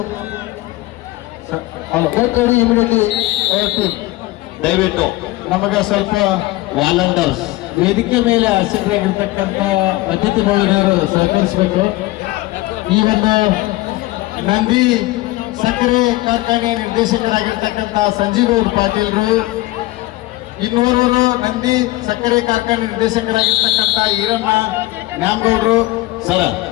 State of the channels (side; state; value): right; quieter; 19.0 dB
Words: Get ready immediately. ದಯವಿಟ್ಟು ನಮಗೆ ಸ್ವಲ್ಪ ವಾಲಂಟರ್ಸ್ ವೇದಿಕೆ ಮೇಲೆ ಆಸಕ್ತರಾಗಿರ್ತಕ್ಕಂಥ ಅತಿಥಿ ಮಹಿಳೆಯರು ಸಹಕರಿಸಬೇಕು. ಈ ಒಂದು ನಂದಿ ಸಕ್ಕರೆ ಕಾರ್ಖಾನೆ ನಿರ್ದೇಶಕರಾಗಿರ್ತಕ್ಕಂಥ ಸಂಜೀವ್ ಪಾಟೀಲ್ರು, ಇನ್ನೋರ್ವರು ನಂದಿ ಸಕ್ಕರೆ ಕಾರ್ಖಾನೆ ನಿರ್ದೇಶಕರಾಗಿರ್ತಕ್ಕಂಥ ಈರಣ್ಣ ನ್ಯಾಮಗೌಡರು.